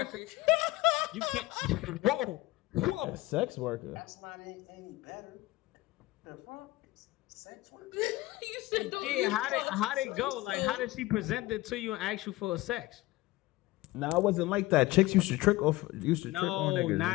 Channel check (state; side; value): quieter; right; 18.9 dB